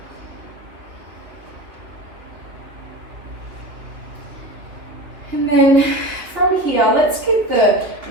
And then from here, let's get the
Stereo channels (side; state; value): left; late; 2.7 ms